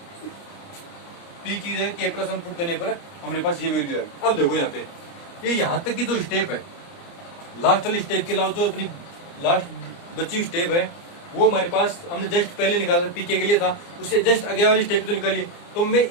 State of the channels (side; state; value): right; late; 29 ms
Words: पी की जगह के प्लस 1 पुट करने पर हमारे पास ये वैल्यू है। अब देखो यहाँ पे ये यहाँ तक की जो स्टेप है, लास्ट वाली स्टेप के अलावा जो अपनी लास्ट बची हुई स्टेप है, वो हमारे पास हमने जस्ट पहले निकाला पीके के लिए था, उससे जस्ट आगे वाली स्टेप तो निकाली। तो मैं